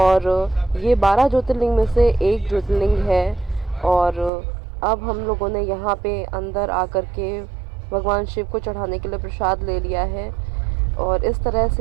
ये 12 ज्योतिर्लिंग में से एक ज्योतिर्लिंग है। और अब हम लोगों ने यहाँ पे अंदर आकर के भगवान शिव को चढ़ाने के लिए प्रसाद ले लिया है, और इस तरह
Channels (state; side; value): drops out; left; at 4.3 s